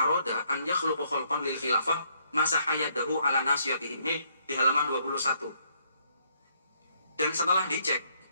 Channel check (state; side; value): inverted; both; correlation -0.70